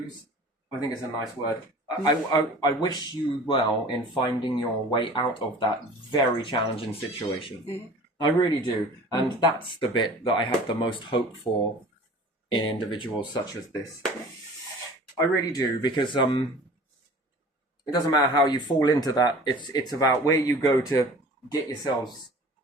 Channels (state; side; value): normal; both; correlation 0.43